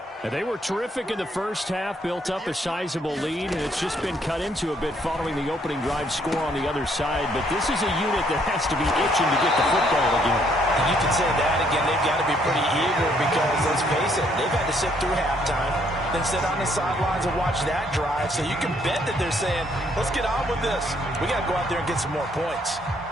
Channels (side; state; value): both; normal; correlation 0.68